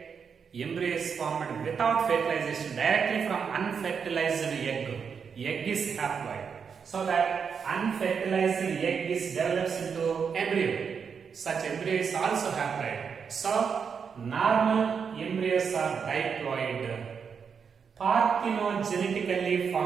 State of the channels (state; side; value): quieter; left; 6.4 dB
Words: embryo is formed without fertilization directly from unfertilized egg. Egg is haploid. So that unfertilized egg is develops into embryo. Such embryo is also haploid. So, normal embryos are diploid. Parthenogenetically